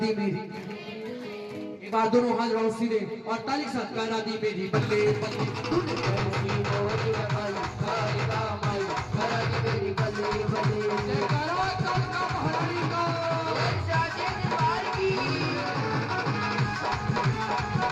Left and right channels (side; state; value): both; identical; correlation 1.00